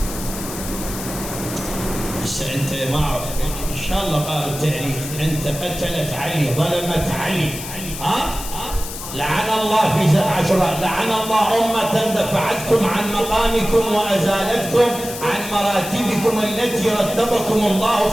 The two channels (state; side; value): noise; left; hiss, 9 dB below the sound